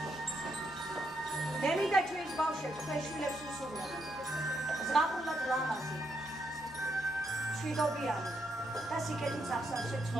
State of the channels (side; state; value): both; normal; correlation 0.78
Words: ბავშვებს თქვენ შვილებს უსურვებთ. ზღაპრულად ლამაზი, მშვიდობიანი და სიკეთით სახსავსე